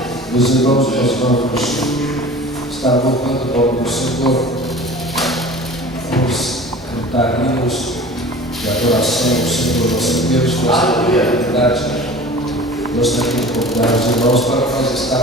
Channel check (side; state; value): both; normal; correlation 0.40